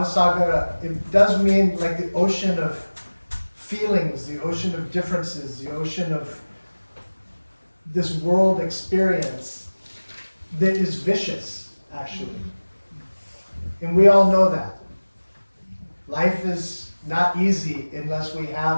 it does mean like the ocean of feelings, the ocean of differences, the ocean of this world experience that is vicious, actually. And we all know that. Life is not easy unless we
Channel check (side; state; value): both; inverted; correlation -1.00